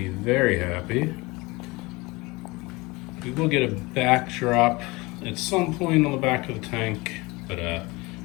very happy. We will get a backdrop at some point on the back of the tank, but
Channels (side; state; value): right; quieter; 23.7 dB